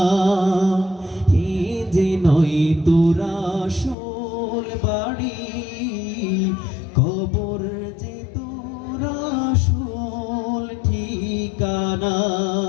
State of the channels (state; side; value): drops out; right; at 4.0 s